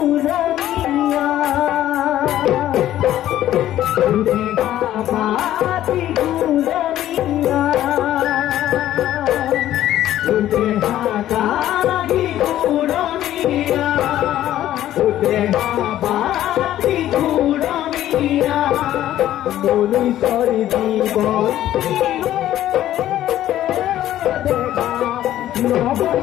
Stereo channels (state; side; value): quieter; right; 12.9 dB